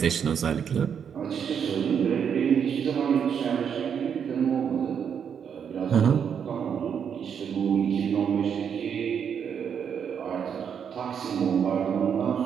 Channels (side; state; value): left; quieter; 7.6 dB